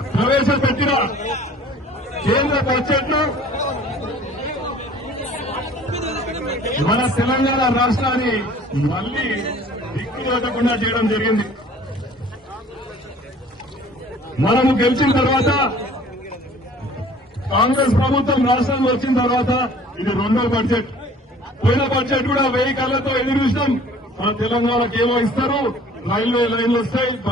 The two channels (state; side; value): normal; both; correlation 0.50